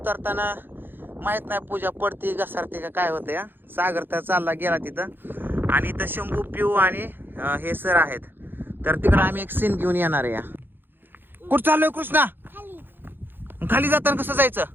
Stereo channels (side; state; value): left; late; 0.098 ms